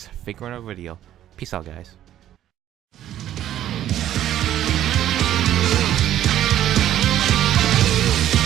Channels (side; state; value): left; quieter; 12.0 dB